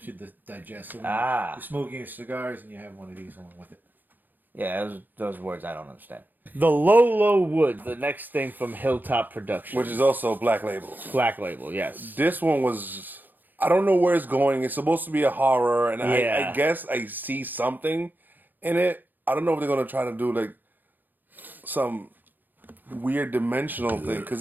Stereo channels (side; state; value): left; late; 0.087 ms